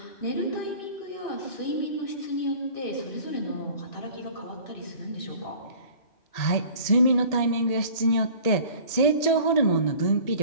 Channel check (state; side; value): late; right; 1.8 ms